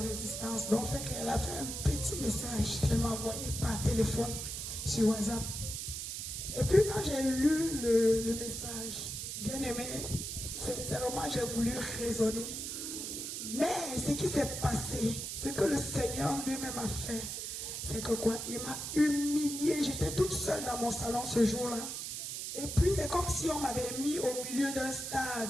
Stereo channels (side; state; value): right; noise; hiss, 5 dB below the sound